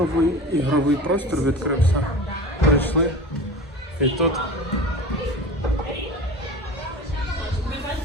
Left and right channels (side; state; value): both; normal; correlation 0.35